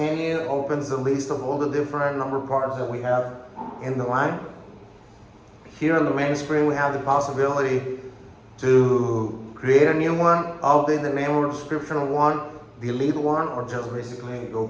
opens the list of all the different number parts that we have in the line. Here on the main screen, we have the possibility to create a new one, update the name or description of one, delete one, or just basically go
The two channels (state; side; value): identical; both; correlation 1.00